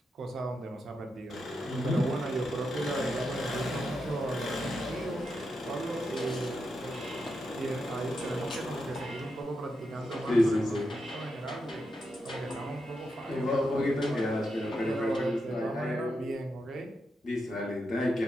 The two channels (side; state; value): both; normal; correlation 0.85